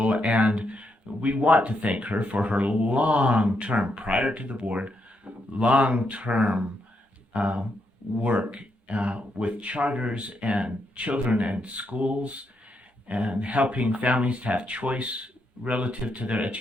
And we want to thank her for her long-term, prior to the board, long-term work with charters and children and schools, and helping families to have choice relative to their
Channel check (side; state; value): right; late; 9.9 ms